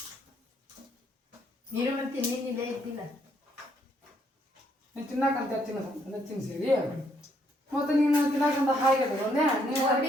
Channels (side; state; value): both; normal; correlation 0.71